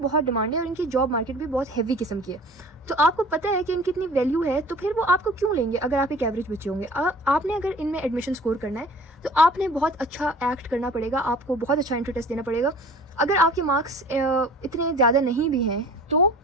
डिमांड है और इनकी जॉब मार्केट भी बहुत हैवी किस्म की है। तो आपको पता है कि इनकी इतनी वैल्यू है, तो फिर वो आपको क्यों लेंगे अगर आप एक एवरेज बच्चे होंगे। आपने अगर इनमें एडमिशन स्कोर करना है तो आपने बहुत अच्छा एक्ट करना पड़ेगा, आपको बहुत अच्छा एंट्री टेस्ट देना पड़ेगा। अगर आपके मार्क्स इतने ज़्यादा नहीं भी हैं तो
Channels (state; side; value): normal; both; correlation 0.45